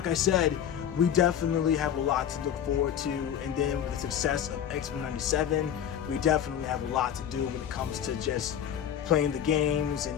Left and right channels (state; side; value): quieter; right; 9.4 dB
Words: I said, we definitely have a lot to look forward to, and then with the success of X-Men 97, we definitely have a lot to do when it comes to just playing the games